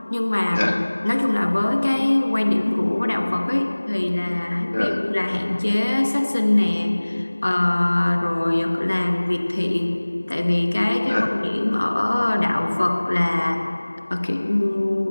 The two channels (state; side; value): inverted; both; correlation -1.00